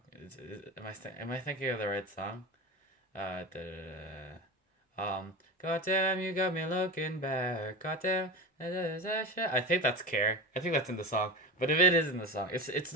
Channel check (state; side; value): normal; both; correlation 0.26